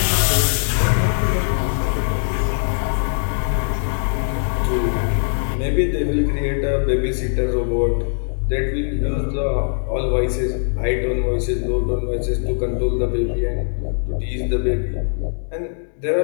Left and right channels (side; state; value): right; silent; digital silence